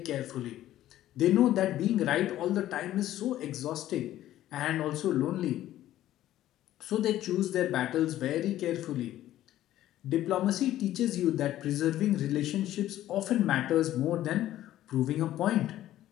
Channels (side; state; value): right; quieter; 13.5 dB